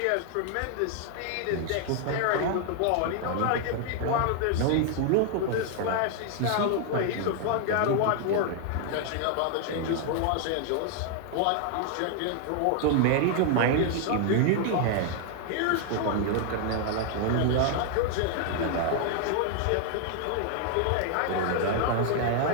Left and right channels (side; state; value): both; different; correlation 0.00